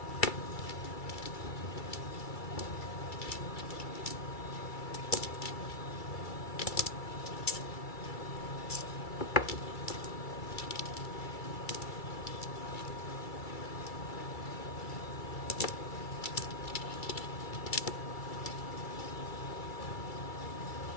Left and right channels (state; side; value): late; right; 2.3 ms